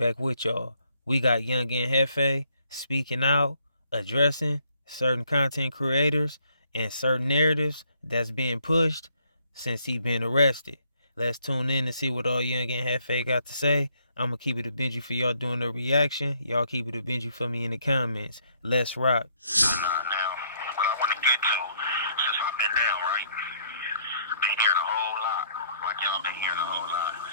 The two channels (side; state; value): both; inverted; correlation -0.68